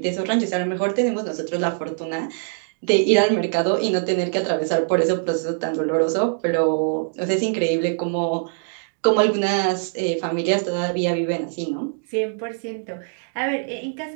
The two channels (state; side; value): silent; left; digital silence